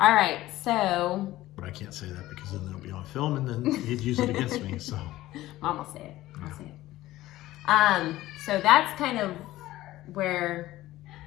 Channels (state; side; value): quieter; right; 16.1 dB